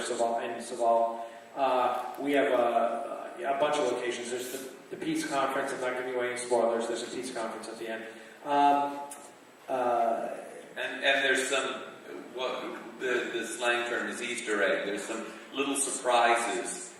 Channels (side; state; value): both; identical; correlation 1.00